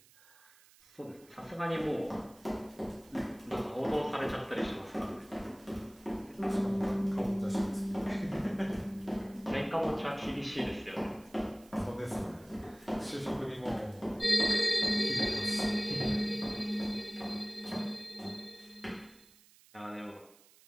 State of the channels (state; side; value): noise; right; hiss, 26 dB below the sound